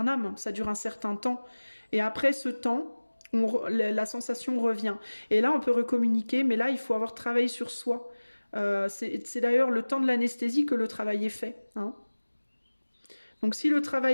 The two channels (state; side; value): inverted; both; correlation -1.00